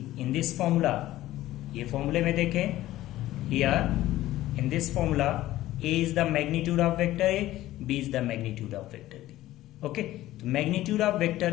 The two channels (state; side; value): quieter; right; 15.3 dB